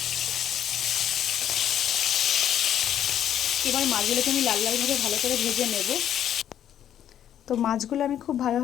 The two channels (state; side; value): quieter; right; 10.4 dB